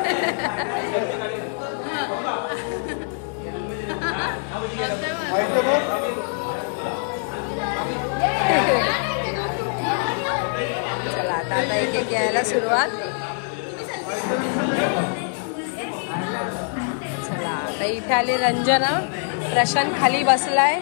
चला आता एक एक यायला सुरुवात. चला आता इथे आली रंजना. प्रशांत खाली बसलाय.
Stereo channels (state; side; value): silent; right; 57 dB below the other